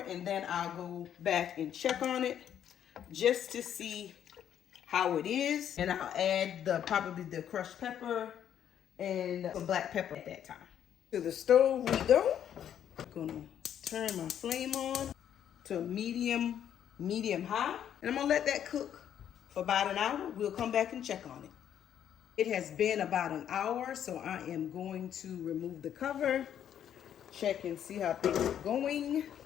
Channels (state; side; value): quieter; right; 9.7 dB